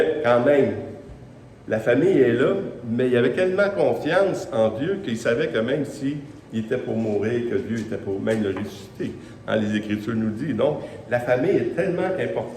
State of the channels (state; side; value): identical; both; correlation 1.00